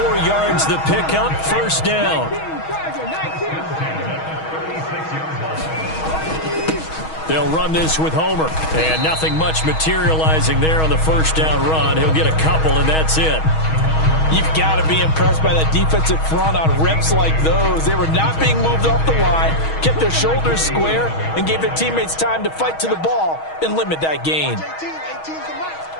yards the pickup, first down. They'll run this with Homer. And nothing much materializing there on the first down run. He'll get a couple, and that's it. You've got to be impressed by that defensive front on reps like those. They were not being moved off the line, kept their shoulders square, and gave their teammates time to fight to the ball and limit that gain.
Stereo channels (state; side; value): late; right; 6.3 ms